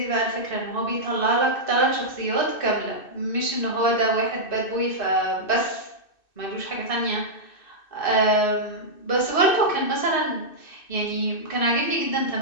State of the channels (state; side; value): late; right; 2.6 ms